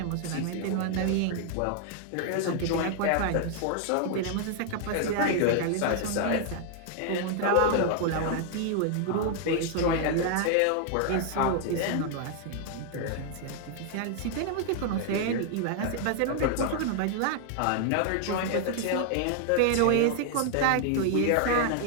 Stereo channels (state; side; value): different; both; correlation 0.00